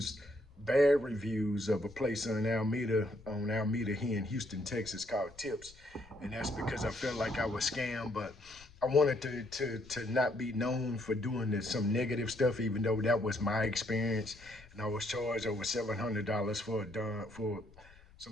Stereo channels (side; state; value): left; noise; rumble, 23 dB below the sound